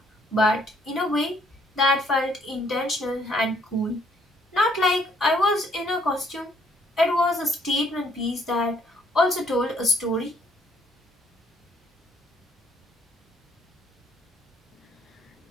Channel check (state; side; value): normal; both; correlation 0.67